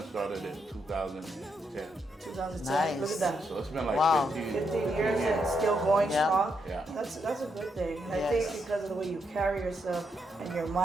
started in 2010. 2010. Look Nice. at that. So it's been like Wow. 15 years and it's still going Yeah. strong. Yeah. That's a good thing. And I Yes. think because of the way you carry yourself and your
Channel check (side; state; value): both; normal; correlation 0.79